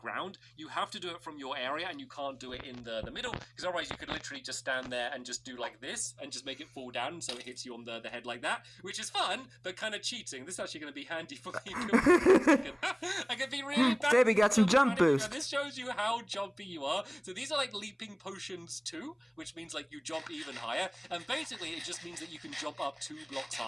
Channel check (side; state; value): both; identical; correlation 1.00